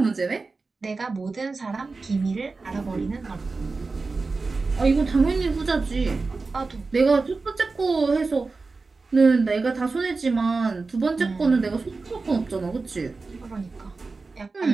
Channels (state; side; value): quieter; left; 4.0 dB